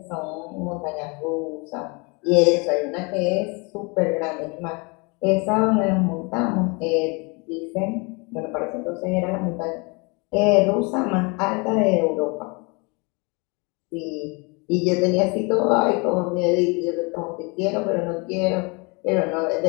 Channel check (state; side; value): quieter; right; 29.8 dB